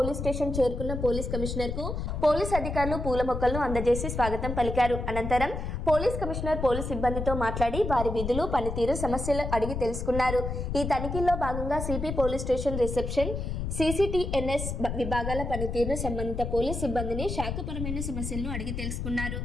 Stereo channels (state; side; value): noise; left; rumble, 4 dB below the sound